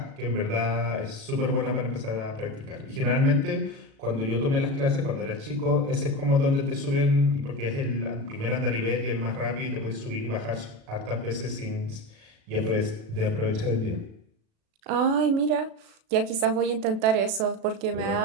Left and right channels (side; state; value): left; late; 36 ms